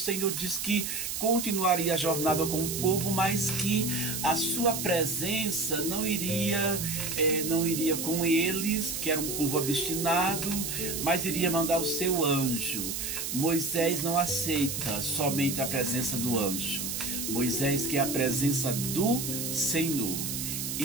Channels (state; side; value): noise; right; hiss, 4 dB below the sound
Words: diz que continuaria a jornada com o povo, mas que a sua presença não iria com eles, que era um povo obstinado, mas iria mandar o seu anjo. Moisés não aceita somente a presença do anjo. Moisés quer a presença do Senhor.